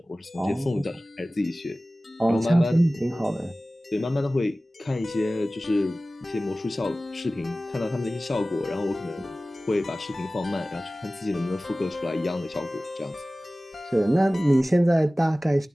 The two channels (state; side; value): normal; both; correlation 0.97